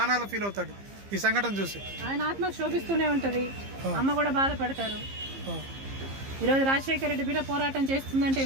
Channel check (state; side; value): late; left; 15 ms